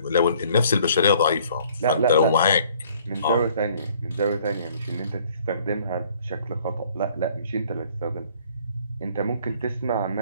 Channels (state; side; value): inverted; both; correlation -0.58